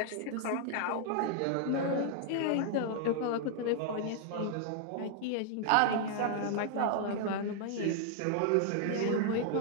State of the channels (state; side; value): different; both; correlation 0.00